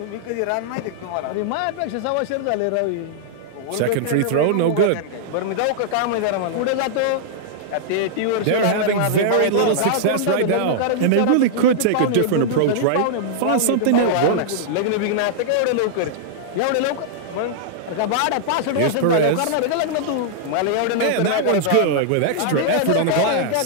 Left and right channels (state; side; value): different; both; correlation -0.01